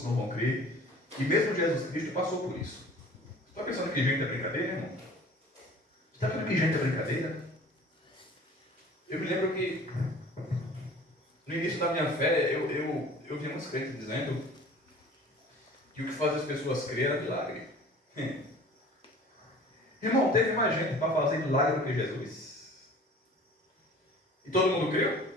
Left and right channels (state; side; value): normal; both; correlation 0.46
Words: não vão crer. E mesmo Jesus Cristo passou por isso. Você está pensando que gente é brincadeira, irmão? Você está vendo que gente é brincadeira? Eu me lembro que no início da minha fé, eu vi muitos crentes dizendo que o que faz as pessoas crer era milagre. Irmão, teve mais gente para fazer milagre do que Jesus. E todo mundo creu?